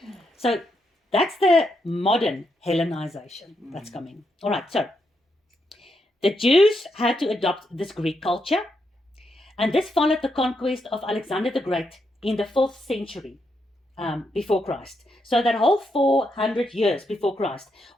So that's the modern Hellenization that's coming. All right, so the Jews had to adopt this Greek culture, and this followed the conquest of Alexander the Great in the 4th century before Christ. So that whole 400 years before Christ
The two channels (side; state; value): both; normal; correlation 0.81